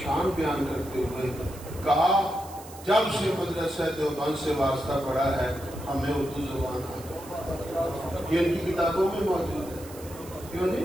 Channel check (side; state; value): right; noise; hiss, 18 dB below the sound